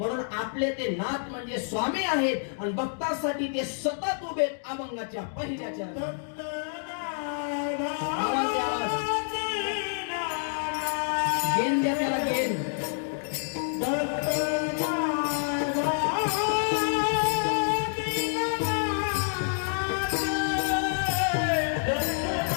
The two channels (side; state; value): right; silent; digital silence